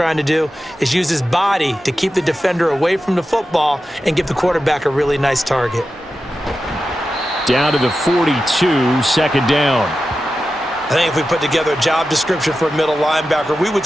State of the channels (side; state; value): both; normal; correlation 0.92